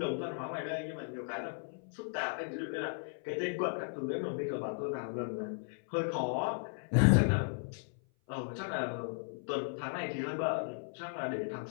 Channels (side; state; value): right; silent; 54 dB below the other